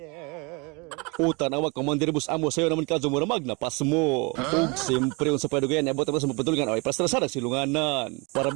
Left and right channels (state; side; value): quieter; left; 29.4 dB